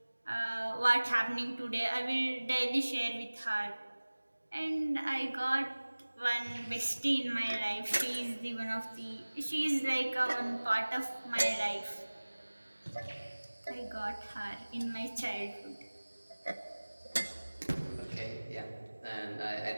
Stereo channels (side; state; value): both; inverted; correlation -1.00